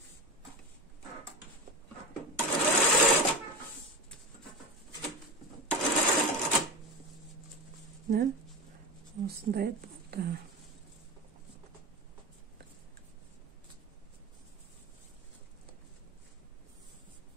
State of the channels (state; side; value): normal; both; correlation 0.25